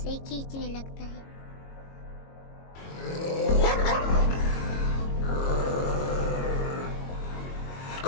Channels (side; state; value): right; late; 22 ms